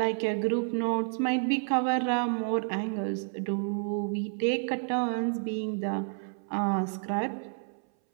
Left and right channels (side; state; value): left; silent; 58 dB below the other